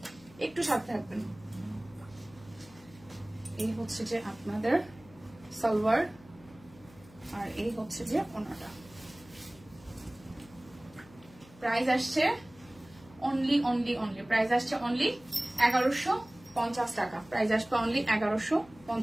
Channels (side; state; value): left; noise; hum, 23 dB below the sound